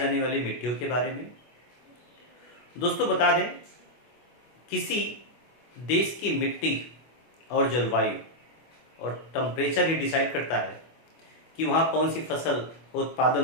वाली मिट्टियों के बारे में। दोस्तों बता दें, किसी देश की मिट्टी और जलवायु और टेम्परेचर ही डिसाइड करता है कि वहाँ कौन सी फसल उत्पादन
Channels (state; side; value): late; right; 25 ms